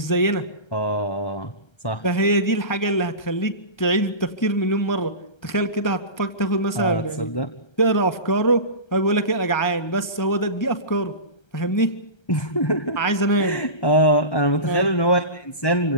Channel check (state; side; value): late; right; 1.3 ms